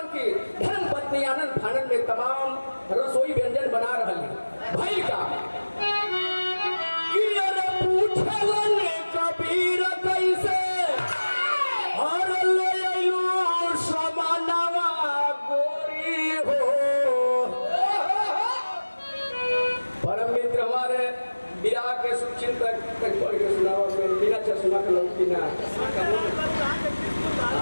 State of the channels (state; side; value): inverted; both; correlation -1.00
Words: की धर्म पत्नी आनंद फानन में तमाम रसोई व्यंजन बना रहली। भइल का कि अरे पूछलन कबीर कैसे और ले आइलो समानवा गोरी हो। परम मित्र हमारे विराह के सुचिंतक तक पढ़ के सुनावा में बिना चश्मा के लौटी ना